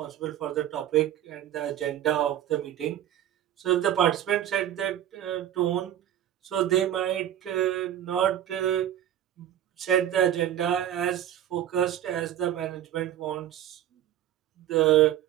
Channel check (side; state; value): left; quieter; 11.5 dB